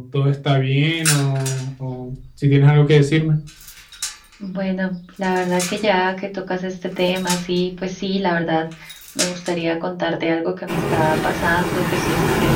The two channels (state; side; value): identical; both; correlation 1.00